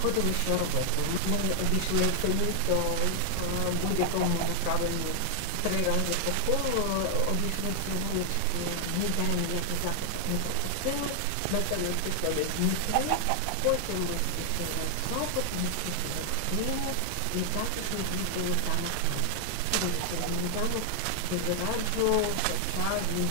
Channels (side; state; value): both; different; correlation 0.00